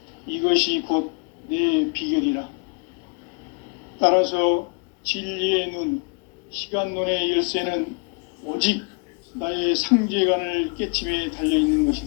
이것이 곧 내 비결이라. 따라서 진리의 눈, 시간론의 열쇠는 오직 나의 상제관을 깨침에 달려있는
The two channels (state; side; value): quieter; right; 35.3 dB